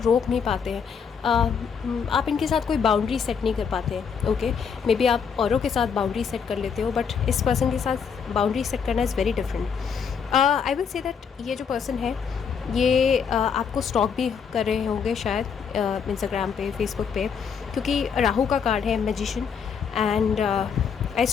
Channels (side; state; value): right; quieter; 6.7 dB